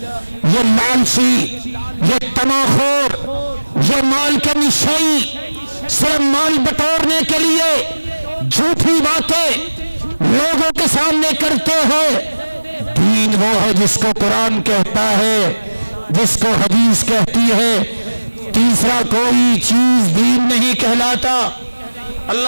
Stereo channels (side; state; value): both; inverted; correlation -1.00